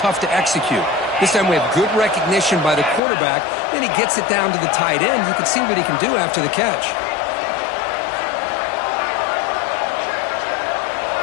to execute. This time we have good recognition by the quarterback. Then he gets it down to the tight end. You can see what he can do after the catch.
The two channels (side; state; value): right; drops out; at 3.0 s